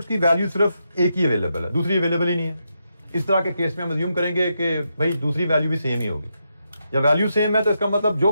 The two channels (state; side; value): inverted; both; correlation -0.84